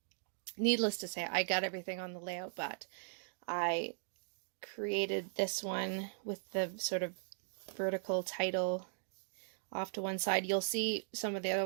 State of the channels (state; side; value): silent; left; digital silence